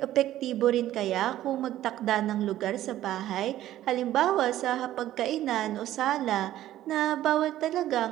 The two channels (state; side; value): quieter; left; 13.4 dB